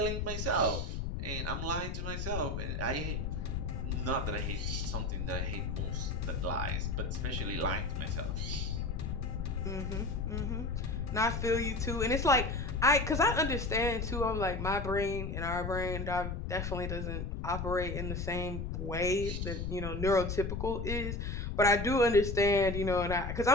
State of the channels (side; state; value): left; noise; rumble, 3 dB below the sound